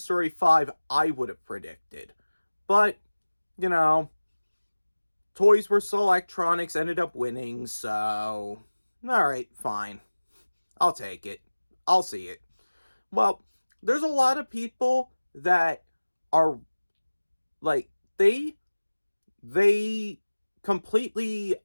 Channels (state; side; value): inverted; both; correlation -1.00